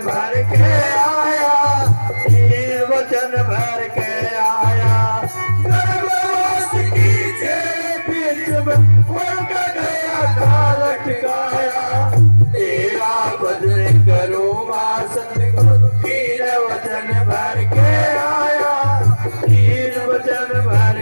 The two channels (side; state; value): both; inverted; correlation -1.00